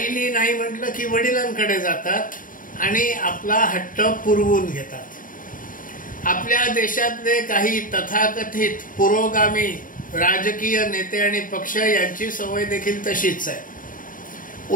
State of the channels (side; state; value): right; late; 0.39 ms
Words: नाही म्हटलं की वडिलांकडे जातात आणि आपला हट्ट पुरवून घेतात. आपल्या देशातले काही तथाकथित पुरोगामी राजकीय नेते आणि पक्ष यांची सवय देखील तशीच आहे.